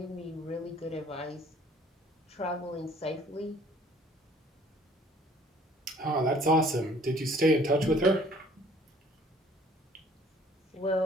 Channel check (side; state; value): both; normal; correlation 0.56